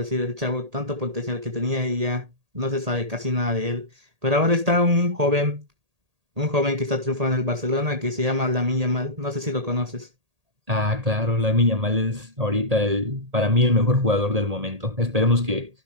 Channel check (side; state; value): left; late; 1.8 ms